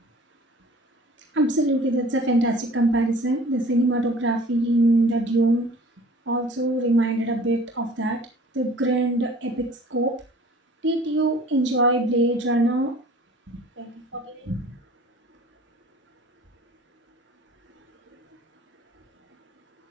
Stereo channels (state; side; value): normal; both; correlation 0.47